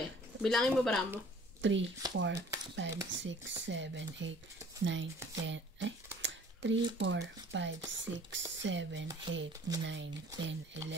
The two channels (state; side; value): normal; both; correlation 0.52